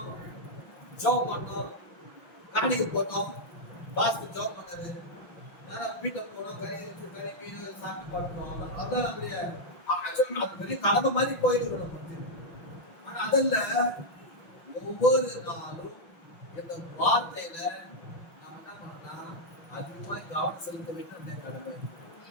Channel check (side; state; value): right; late; 6.0 ms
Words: ஜோப் பண்ணோம், காணிக்கை போட்டோம், பாஸ்க்கு ஜோப் பண்ணாரு, வீட்டை போனோம், கறி மீன் சாப்பிட்டு பண்ணோம். அதான் நம்முடைய அது பெரிய கடமை மாதிரி போயிட்டு நம்ம. ஆனா அதல்ல ஒவ்வொரு நாளும் இந்த வார்த்தையில நாம் என்ன பண்ணலாம், அதிகமாக கவனம் செலுத்த வேண்டும். நம்முடைய கடமை.